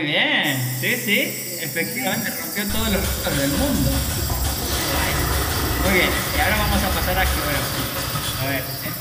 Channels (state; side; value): identical; both; correlation 1.00